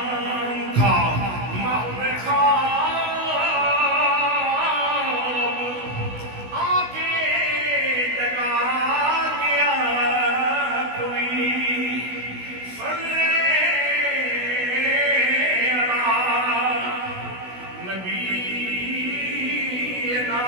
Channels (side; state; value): left; late; 16 ms